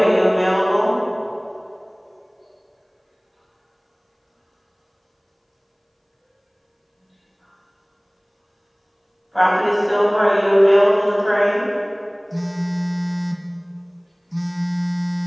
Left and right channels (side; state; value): both; identical; correlation 1.00